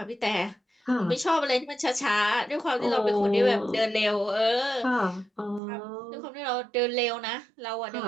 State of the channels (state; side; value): drops out; left; at 5.6 s